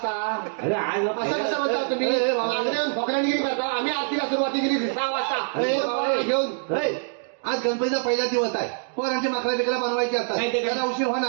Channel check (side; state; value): left; silent; digital silence